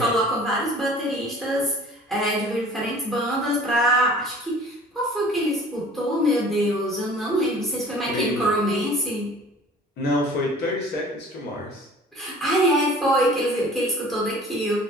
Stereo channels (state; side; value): normal; both; correlation 0.48